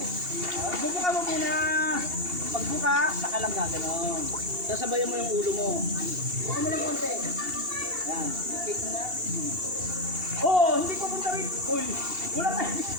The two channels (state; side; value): late; left; 2.7 ms